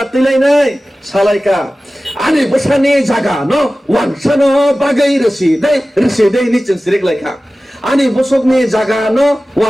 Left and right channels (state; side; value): normal; both; correlation 0.96